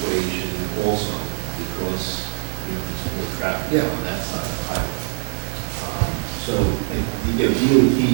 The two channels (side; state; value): left; silent; 64 dB below the other